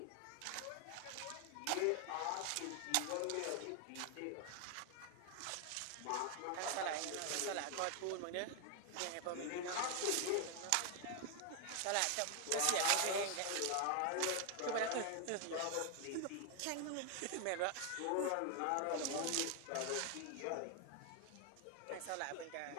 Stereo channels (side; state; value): both; different; correlation 0.01